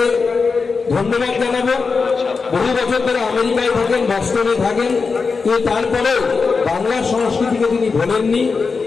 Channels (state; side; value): quieter; right; 4.8 dB